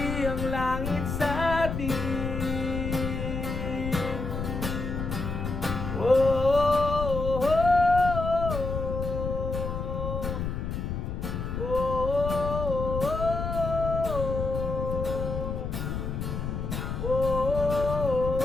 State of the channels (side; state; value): left; noise; rumble, 4 dB below the sound